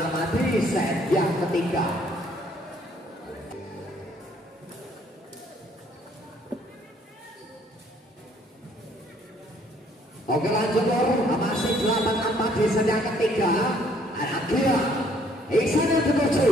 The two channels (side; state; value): both; normal; correlation 0.63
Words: di set yang ketiga. Oke lanjut masih 8-4 di set yang ketiga. Ada Gila Iksan yang dituju